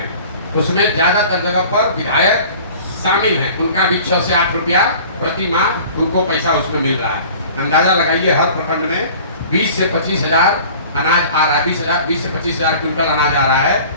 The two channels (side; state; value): both; inverted; correlation -0.45